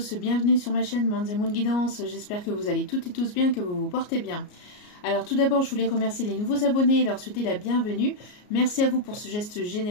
bienvenue sur ma chaîne Manz & Moon Guidance, j'espère que vous allez toutes et tous bien, que vous vous portez bien. Alors tout d'abord je voulais remercier les nouveaux abonnés et leur souhaiter la bienvenue. Merci à vous pour ce geste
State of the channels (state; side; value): late; right; 33 ms